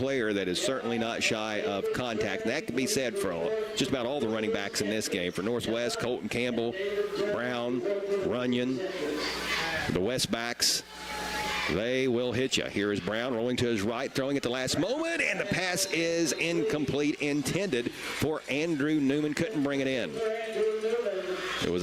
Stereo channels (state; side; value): identical; both; correlation 1.00